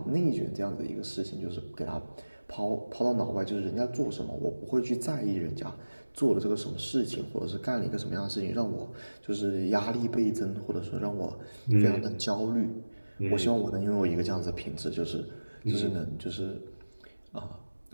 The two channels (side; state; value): both; inverted; correlation -1.00